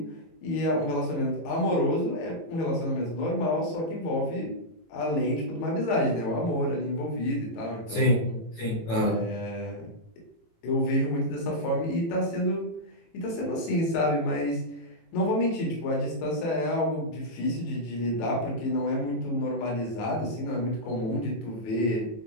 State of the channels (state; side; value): late; right; 18 ms